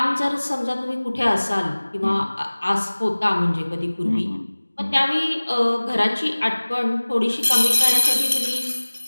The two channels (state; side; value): inverted; both; correlation -1.00